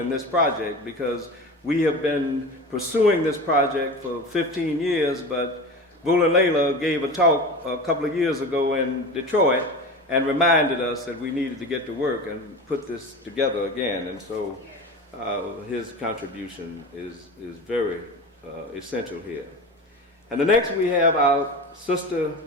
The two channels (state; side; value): normal; both; correlation 0.30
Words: this project, because we have been pursuing this project for 15 years, but Buland Leyla gave a talk a couple of years ago in Detroit and reminded us that we needed to get to work and put this together again. And so his contribution is very essential here. And the next we have our sister